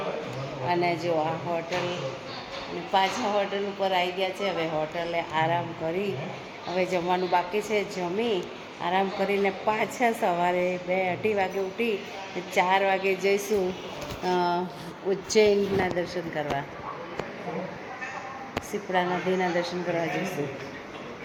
અને જો આ હોટલ પાછા હોટલ ઉપર આવી ગયા છે. હવે હોટલે આરામ કરી હવે જમવાનું બાકી છે. જમી આરામ કરીને પાછા સવારે 2-2:30 વાગે ઉઠી 4 વાગે જઈશું ઉજ્જૈનના દર્શન કરવા. શિપ્રા નદીના દર્શન કરવા જઈશું.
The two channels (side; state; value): both; identical; correlation 1.00